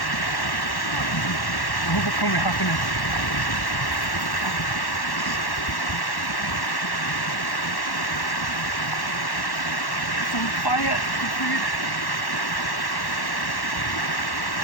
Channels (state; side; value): late; right; 1.1 ms